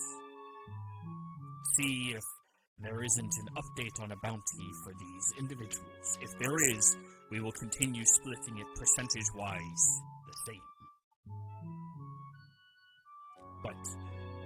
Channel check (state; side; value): identical; both; correlation 1.00